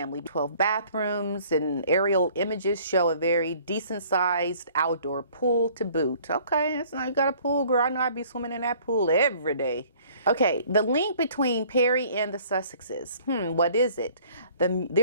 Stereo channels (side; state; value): both; inverted; correlation -0.55